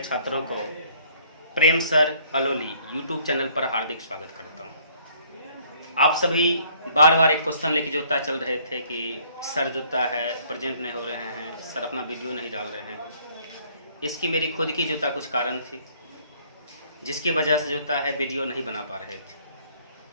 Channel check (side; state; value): both; inverted; correlation -0.60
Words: को प्रेम सर अलोली यूट्यूब चैनल पर हार्दिक स्वागत करता हूं। आप सभी बार बार एक क्वेश्चन लेके जोता चल रहे थे कि सर जोता है प्रेजेंट नहीं हो रहे हैं, सर अपना वीडियो नहीं डाल रहे हैं। इसकी मेरी खुद की जोता कुछ कारण थी जिसकी वजह से जोता है वीडियो नहीं बना पा रहे थे।